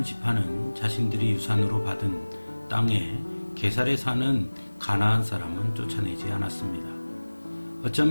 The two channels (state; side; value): inverted; both; correlation -1.00